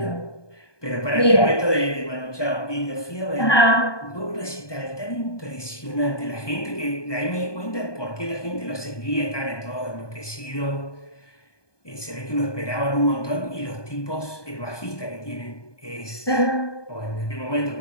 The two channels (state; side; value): late; right; 1.2 ms